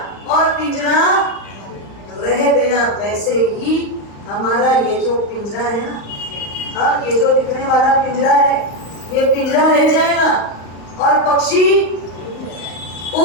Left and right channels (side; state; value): right; late; 34 ms